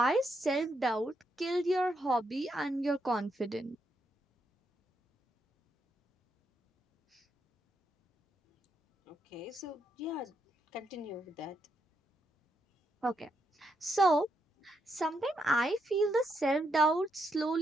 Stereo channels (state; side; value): normal; both; correlation 0.79